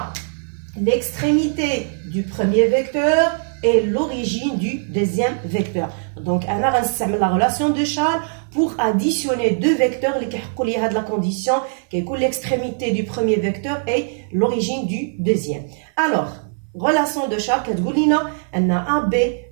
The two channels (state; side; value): silent; left; 60 dB below the other